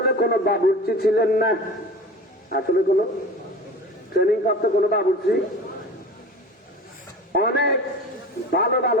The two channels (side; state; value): both; normal; correlation 0.36